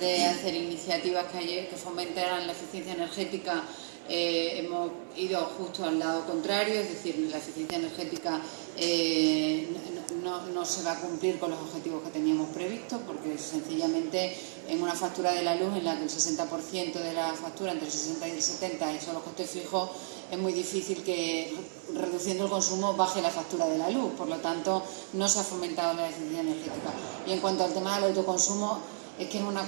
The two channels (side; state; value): left; silent; 56 dB below the other